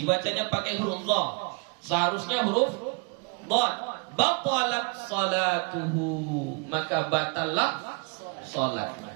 pakai huruf dha. Seharusnya huruf dhad. Batalat salatuhu, maka batallah salatnya.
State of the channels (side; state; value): left; quieter; 33.8 dB